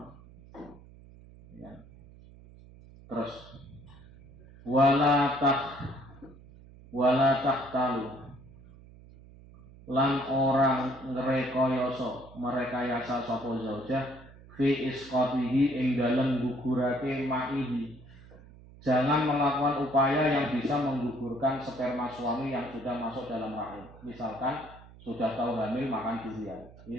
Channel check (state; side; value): noise; right; hum, 21 dB below the sound